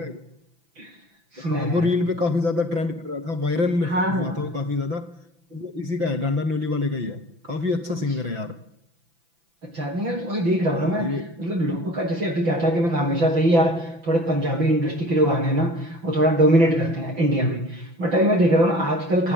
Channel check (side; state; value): left; late; 5.9 ms